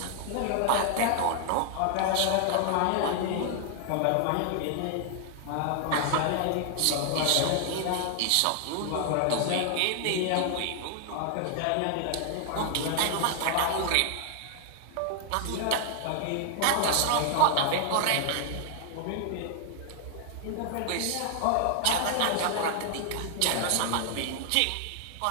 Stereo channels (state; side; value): different; both; correlation 0.00